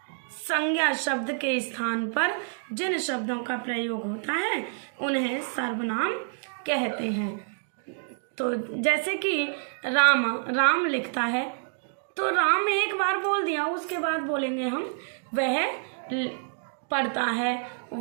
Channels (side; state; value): left; silent; digital silence